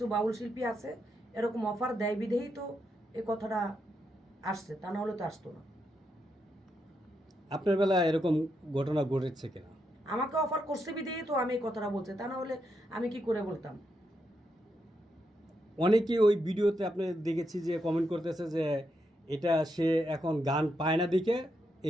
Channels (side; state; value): both; normal; correlation 0.82